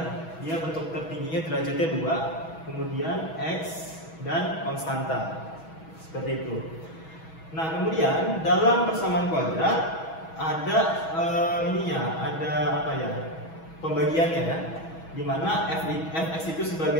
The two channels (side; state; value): right; late; 6.2 ms